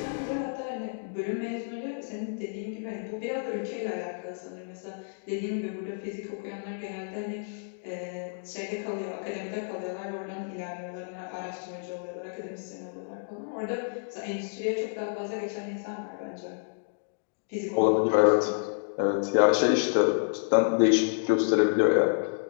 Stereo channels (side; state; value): right; silent; digital silence